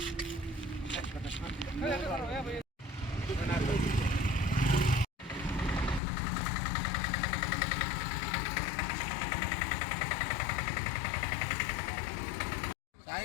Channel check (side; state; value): right; drops out; at 6.0 s